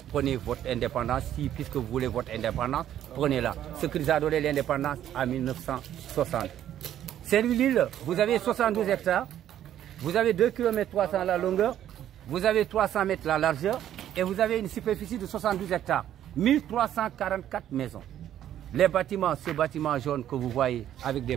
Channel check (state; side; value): quieter; left; 11.2 dB